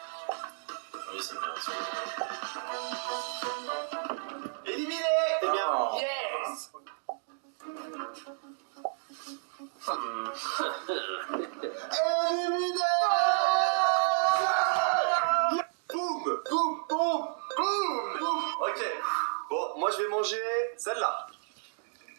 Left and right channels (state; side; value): silent; left; digital silence